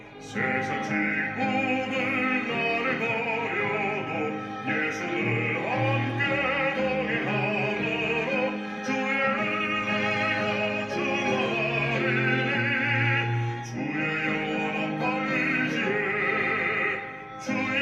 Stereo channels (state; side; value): identical; both; correlation 1.00